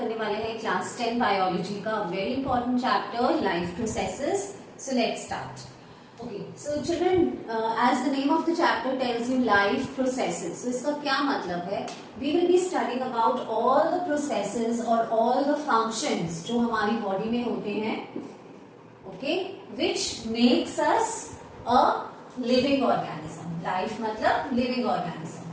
वाले हैं क्लास 10 बायोलॉजी का very important chapter life processes. So let's start. Okay, so children, as the name of the chapter tells you life processes. So इसका क्या मतलब है? We will be studying about all the processes और all the functions जो हमारी body में होते हैं, okay, which makes us a living organism. Life मतलब लिविंग ऑर्गेनिज्म,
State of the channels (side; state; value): both; identical; correlation 1.00